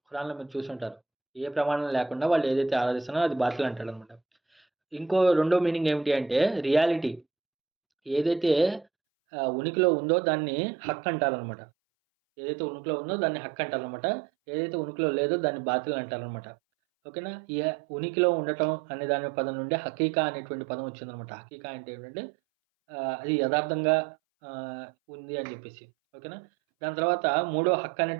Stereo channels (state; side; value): drops out; left; at 8.8 s